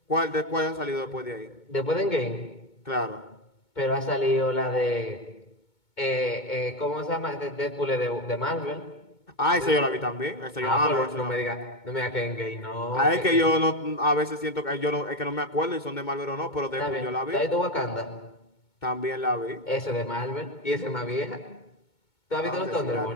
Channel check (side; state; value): right; late; 2.2 ms